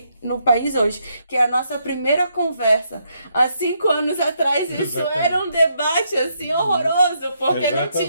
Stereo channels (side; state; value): both; inverted; correlation -0.76